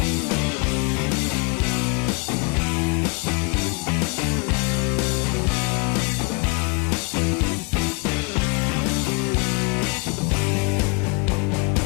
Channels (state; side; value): quieter; right; 32.5 dB